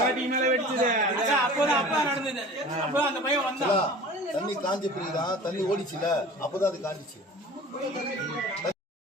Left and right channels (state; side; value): normal; both; correlation 0.41